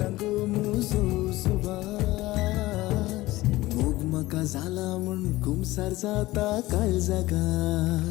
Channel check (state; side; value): quieter; right; 18.3 dB